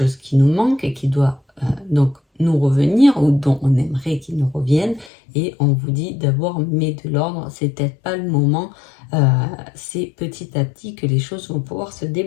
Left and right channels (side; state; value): right; drops out; at 5.1 s